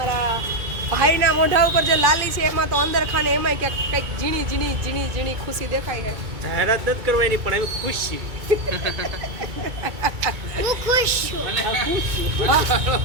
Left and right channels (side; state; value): left; late; 2.2 ms